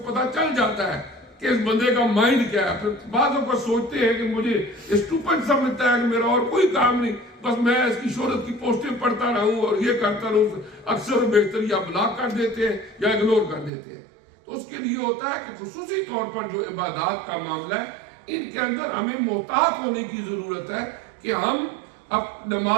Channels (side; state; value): left; drops out; at 13.7 s